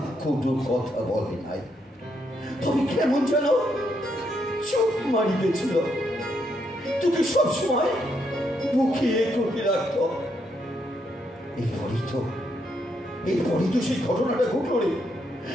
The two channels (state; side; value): normal; both; correlation 0.77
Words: কোনো কথা বলে নাই। তবে কেমন যেন চোখ মারি গেছিল, তোকে সবসময় বুকিয়ে করে রাখত। এরপরই তো সেই ঘটনাটা ঘটল রে।